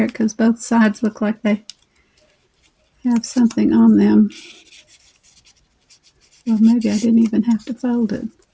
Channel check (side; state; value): both; identical; correlation 1.00